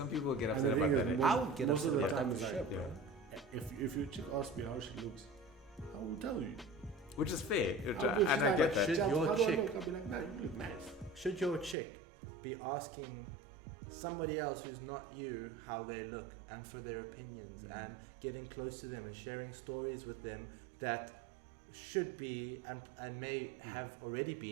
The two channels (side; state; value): left; drops out; at 11.8 s